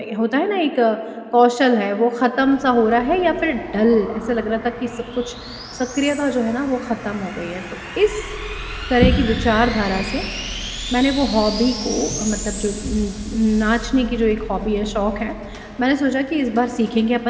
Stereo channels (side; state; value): both; identical; correlation 1.00